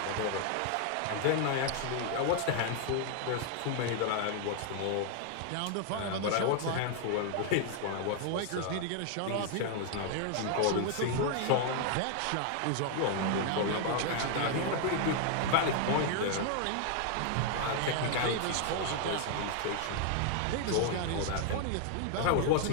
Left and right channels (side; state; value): both; different; correlation 0.00